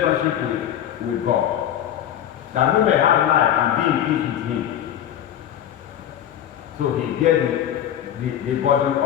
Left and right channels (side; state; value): right; quieter; 10.6 dB